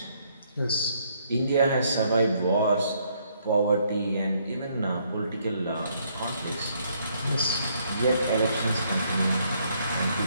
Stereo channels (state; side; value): inverted; both; correlation -0.69